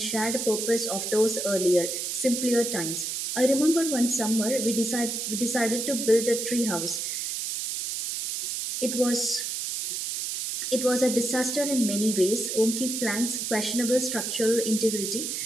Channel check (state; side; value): noise; right; hiss, 3 dB below the sound